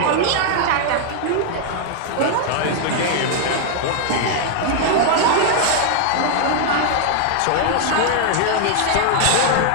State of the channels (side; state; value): both; different; correlation 0.00